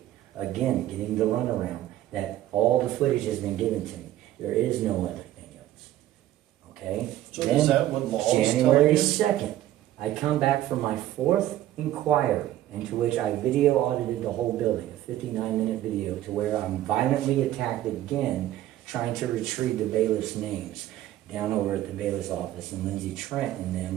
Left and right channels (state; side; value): quieter; left; 13.7 dB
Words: Again, getting the runaround that all the footage has been given to me. There is no other thing else. Okay? So Then, is that what laws tell January you? 2nd, I come back from my 4th inquiry, into which I video audited the whole building, a 59-minute video, to where I'm violently attacked again, trying to retrieve the bailiff's names down over at the bailiff's office, and Lindsay Trent and